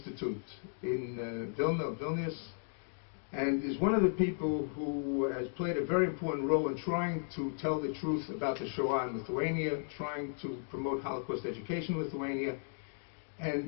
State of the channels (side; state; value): right; silent; digital silence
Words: in Vilnius, and is one of the people who has played a very important role in trying to tell the truth about the Shoah in Lithuania, trying to promote Holocaust education in Lithuania.